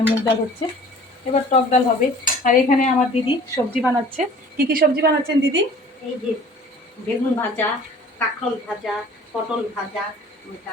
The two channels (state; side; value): normal; both; correlation 0.48